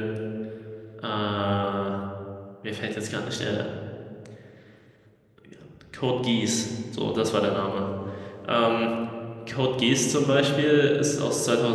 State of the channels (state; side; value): identical; both; correlation 1.00